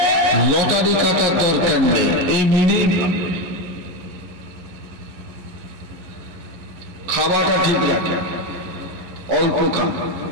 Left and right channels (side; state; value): left; late; 11 ms